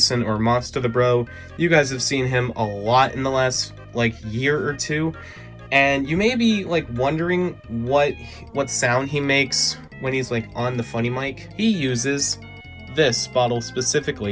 or Monster the Bro. You guys have seen him a lot in the last like year or two. And you may be like wondering what sound he makes when he's like on the funny mic. He uses this bottle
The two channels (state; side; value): identical; both; correlation 1.00